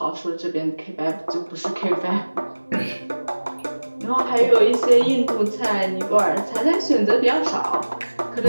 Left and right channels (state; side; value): inverted; both; correlation -1.00